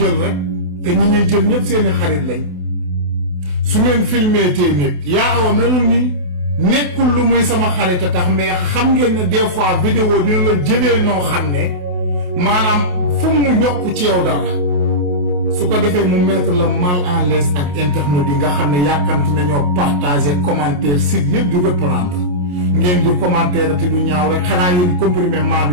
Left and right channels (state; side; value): late; left; 28 ms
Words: rek te ñi ñuy jël ñëpp seeni xarit lañ su ngeen filmé tee nit yaa awa melul nii nekkul lu muy sama xarit a tax mais xam ngeen ne des fois vidéo dina la jëlee noo xam ne maanaam fu mu yokk ci yow dara su ko defee mu mettre la mal en l'aise ak internet yi nga xam ne yàkkamti nañoo partager commentaire site yëpp di reprendre ngeen di commentaire te du ñaaw rek xanaa yéen comprimé maal